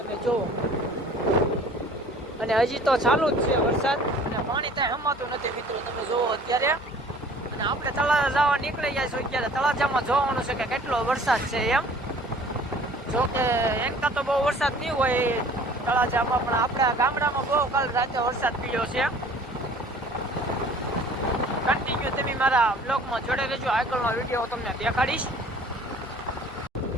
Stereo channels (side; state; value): both; normal; correlation 0.50